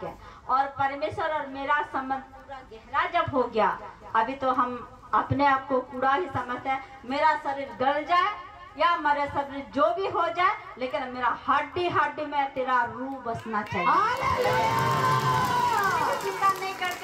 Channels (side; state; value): both; identical; correlation 1.00